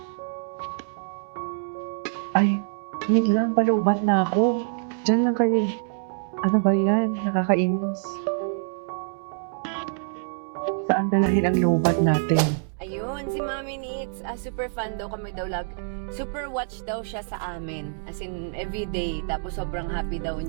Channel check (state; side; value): silent; left; digital silence